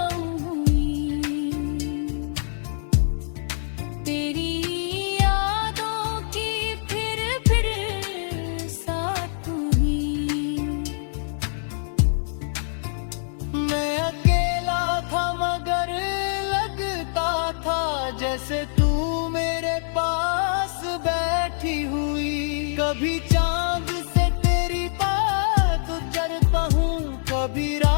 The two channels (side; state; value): right; silent; 62 dB below the other